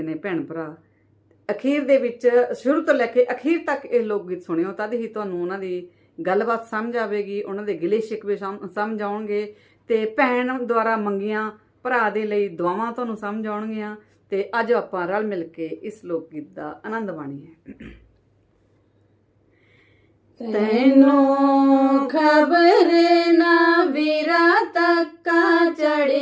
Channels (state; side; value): identical; both; correlation 1.00